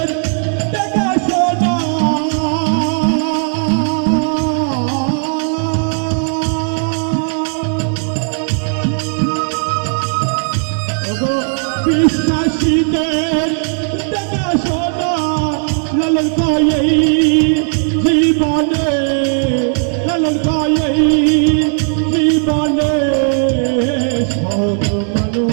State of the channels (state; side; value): silent; left; digital silence